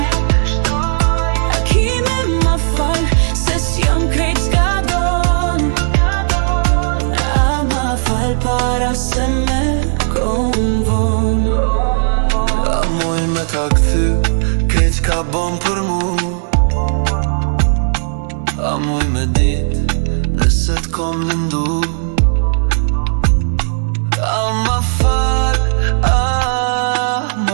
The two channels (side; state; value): left; silent; digital silence